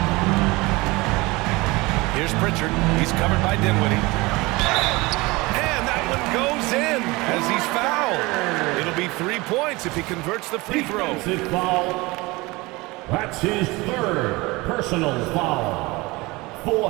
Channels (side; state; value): left; quieter; 22.8 dB